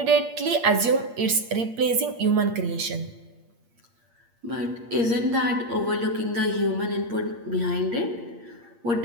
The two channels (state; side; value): late; left; 8.6 ms